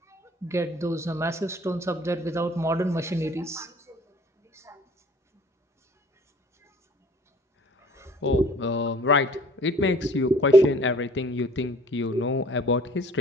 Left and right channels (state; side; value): normal; both; correlation 0.52